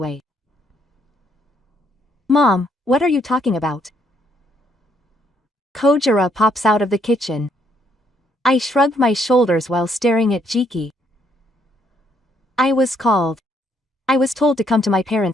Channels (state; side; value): normal; both; correlation 0.71